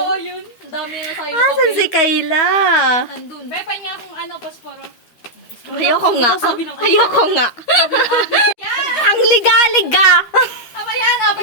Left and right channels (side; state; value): right; late; 13 ms